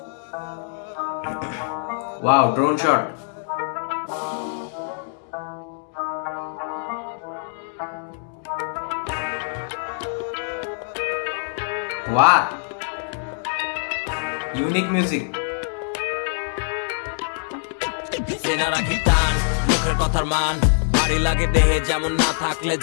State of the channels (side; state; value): right; silent; 63 dB below the other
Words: Wow, drone shot. What? Unique music. সেনা রাখি টান, মুখের কথার মান ভারী লাগে দেহে, যেমন না থাকলে